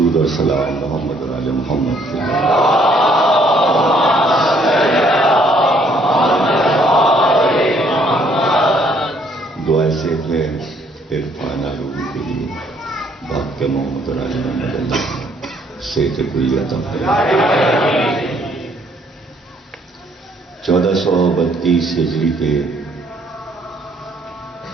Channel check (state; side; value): normal; both; correlation 0.65